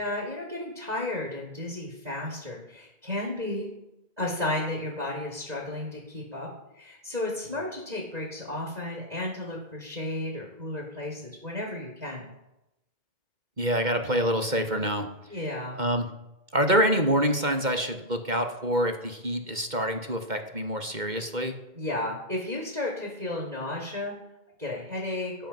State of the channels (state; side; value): late; left; 2.1 ms